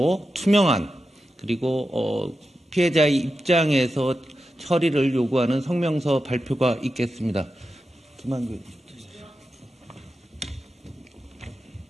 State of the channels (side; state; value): both; normal; correlation 0.90